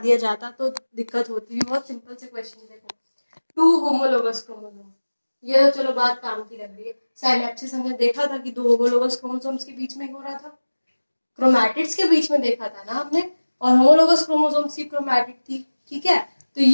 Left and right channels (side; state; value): both; inverted; correlation -1.00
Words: जाता तो दिक्कत होती। बहुत सिंपल से क्वेश्चन। देखो 2 होमोलोगस क्रोमोसोम, ये तो चलो बात काम की लग रही है। साइनेप्सिस हमने देखा था कि 2 होमोलोगस क्रोमोसोम्स के बीच में हो रहा था, क्रोमैटिड्स के बीच में देखा था ना हमने, और होमोलोगस क्रोमोसोम्स की क्रोमैटिड थी। ठीक है, तो